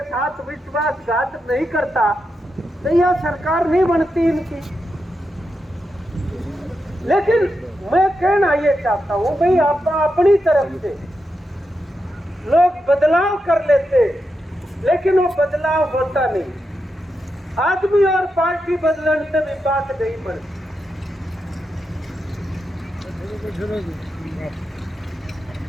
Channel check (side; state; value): both; normal; correlation 0.86